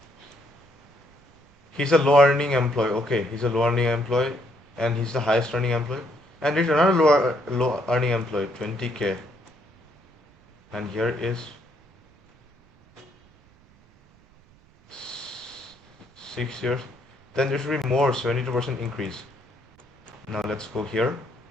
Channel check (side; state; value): right; noise; rumble, 30 dB below the sound